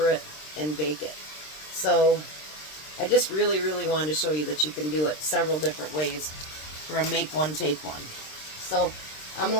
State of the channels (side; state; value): right; late; 26 ms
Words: it, and bake it. So I just really wanted to show you that you can do it several different ways for a make one, take one. So I'm